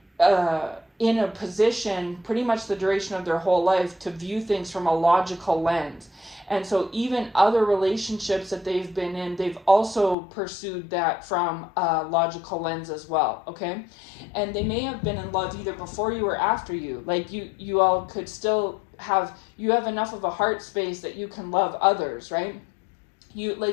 in a position pretty much the duration of their whole life to view things from a logical lens. And so even other relationships that they've been in, they've also pursued that from a logical lens as well, okay? And they may have been in love either before you or after you. Like, you all could still have enough of a heart space that you can love others, right?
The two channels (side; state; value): right; drops out; at 10.2 s